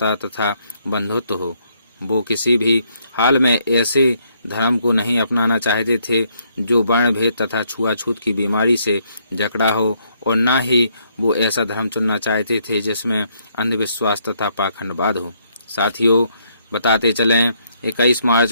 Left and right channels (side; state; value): both; inverted; correlation -0.71